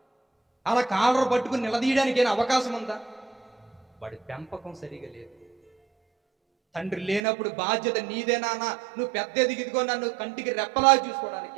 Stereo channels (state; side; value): drops out; left; at 7.2 s